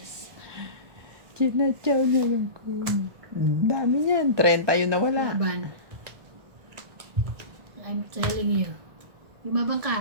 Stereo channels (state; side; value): late; left; 1.6 ms